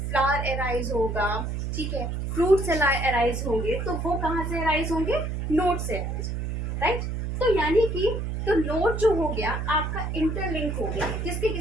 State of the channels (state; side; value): noise; right; hum, 3 dB below the sound